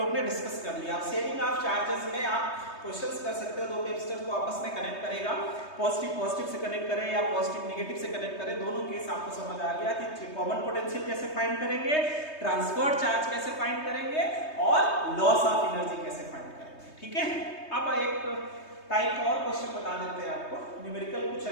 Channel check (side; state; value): right; late; 3.2 ms